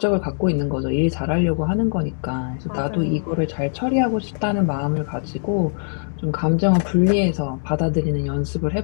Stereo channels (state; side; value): silent; right; digital silence